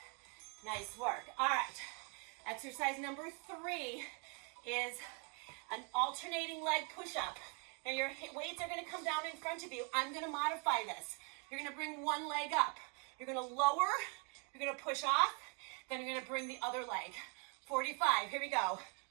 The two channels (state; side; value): quieter; left; 37.0 dB